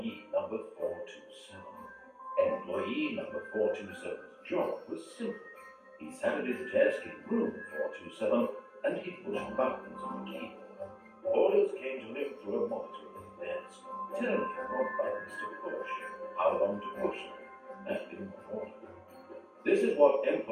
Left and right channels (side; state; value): both; identical; correlation 1.00